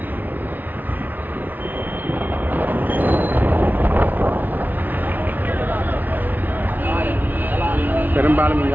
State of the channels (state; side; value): late; left; 0.084 ms